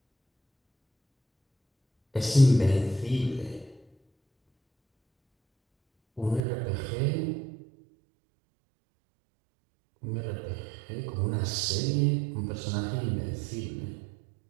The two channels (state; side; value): drops out; left; at 6.4 s